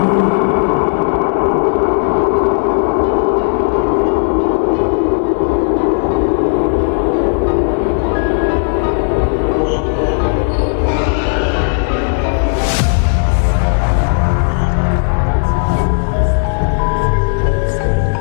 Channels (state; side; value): silent; right; digital silence